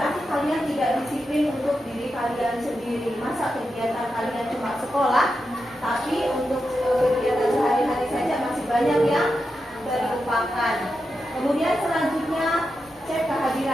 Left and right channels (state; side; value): normal; both; correlation 0.88